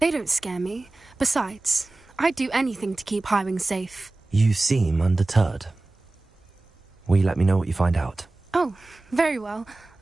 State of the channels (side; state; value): left; quieter; 3.0 dB